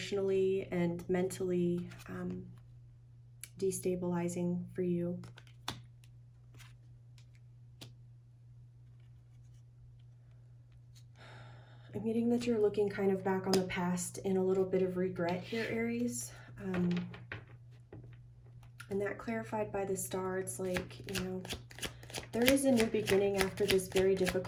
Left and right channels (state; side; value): identical; both; correlation 1.00